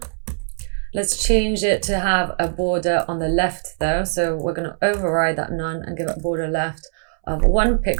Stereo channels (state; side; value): silent; left; 62 dB below the other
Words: Let's change it to have a border on the left though. So we're going to override that none and give it border left of 1